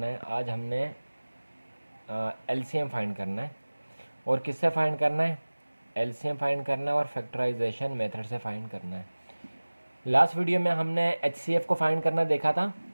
है? आज हमने LCM फाइंड करना है और किससे फाइंड करना है? LCM फाइंड करना है और फैक्टराइजेशन मेथड से फाइंड करना है। लास्ट वीडियो में हमने HCF को फाइंड करना देखा था,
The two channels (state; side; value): inverted; both; correlation -1.00